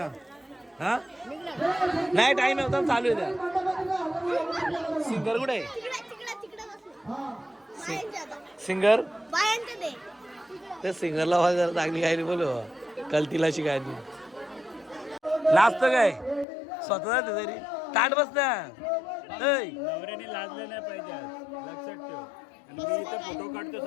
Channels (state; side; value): drops out; right; at 16.4 s